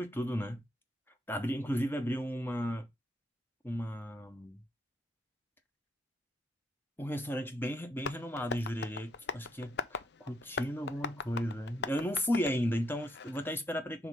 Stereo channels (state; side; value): normal; both; correlation 0.75